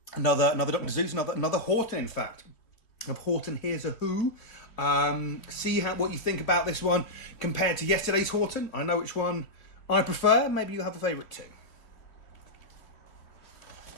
Another Dr. Seuss, another Horton, in fact. Of Horton Here's a Who. See what you think about this one compared to yesterday's Horton. I know which one I prefer. Maybe you have a favourite too.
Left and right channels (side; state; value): right; late; 2.9 ms